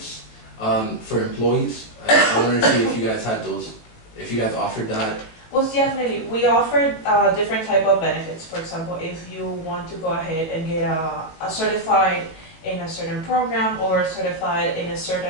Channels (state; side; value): late; right; 19 ms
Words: for employees. I wanted to see if you guys had those, if you guys offered that. Well, definitely. We offer different type of benefits. For example, if you want to go ahead and get a certified in a certain program or certified in a